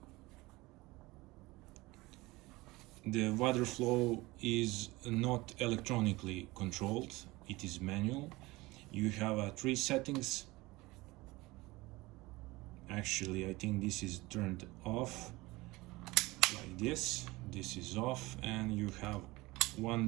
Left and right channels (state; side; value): quieter; left; 21.2 dB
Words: The water flow is not electronically controlled, it is manual. You have 3 settings. Actually, I think this is turned off like this. This is off, and you have